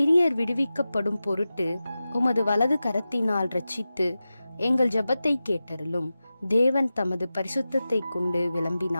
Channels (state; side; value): inverted; both; correlation -0.94